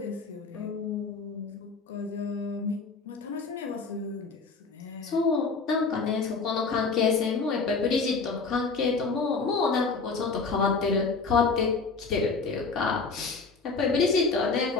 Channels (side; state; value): right; quieter; 4.4 dB